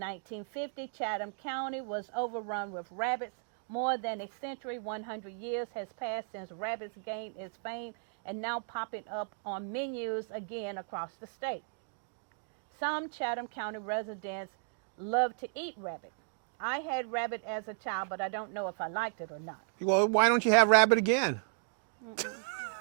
Chatham County was overrun with rabbits. More than a century, 100 years has passed since rabbits gained its fame and now popping up on menus again across the state. Some Chatham County residents love to eat rabbit. I had rabbit as a child, but I don't know if I liked it or not. Well, why don't you have rabbit again?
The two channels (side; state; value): left; silent; digital silence